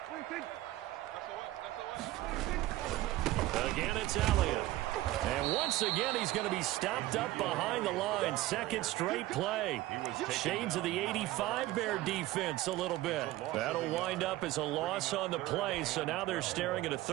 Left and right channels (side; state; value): left; quieter; 16.6 dB